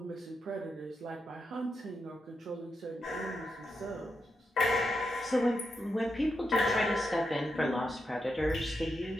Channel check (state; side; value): normal; both; correlation 0.85